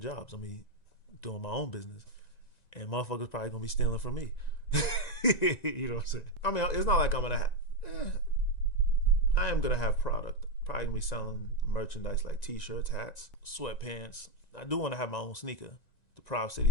I'm gonna be doing my own business. And motherfuckers probably gonna be stealing from me. You know what I'm saying? I mean, it's not like I'm gonna I am gonna have product. Probably gonna be selling merchandise like t-shirts, hats, sweatpants. I do want to have my own sneaker, the Prov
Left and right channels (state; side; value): late; right; 1.9 ms